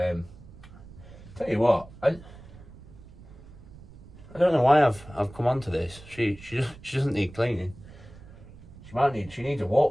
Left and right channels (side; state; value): right; noise; rumble, 19 dB below the sound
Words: tell you what, I don't know why I've come onto this. She doesn't need cleaning. She needs a